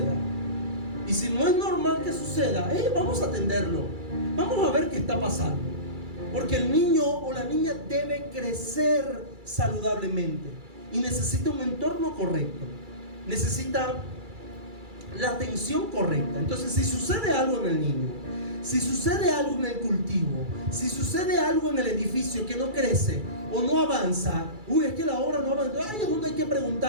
Y si no es normal que suceda, vamos a atenderlo. Vamos a ver qué está pasando. Porque el niño o la niña debe crecer saludablemente y necesita un entorno correcto. Necesita la atención correcta. Entonces, si sucede algo en el niño, si sucede algo en el cultivo, si sucede algo en el edificio que no crece o no avanza, es que la obra no avanza, ahí es donde hay que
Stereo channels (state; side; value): late; left; 2.3 ms